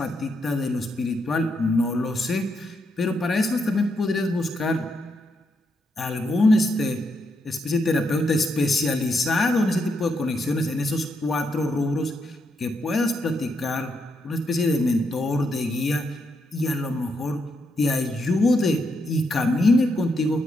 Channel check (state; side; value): normal; both; correlation 0.80